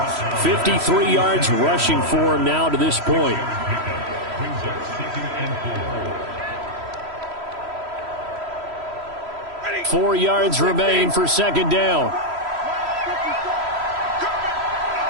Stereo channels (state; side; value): late; left; 3.1 ms